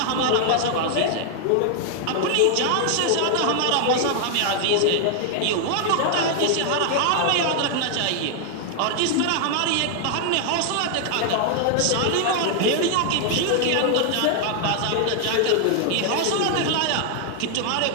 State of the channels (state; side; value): different; both; correlation 0.00